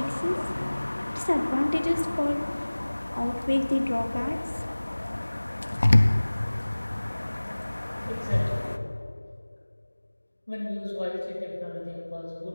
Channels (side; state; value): both; inverted; correlation -1.00